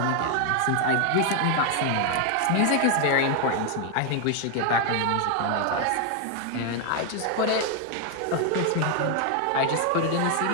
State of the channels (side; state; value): both; different; correlation 0.00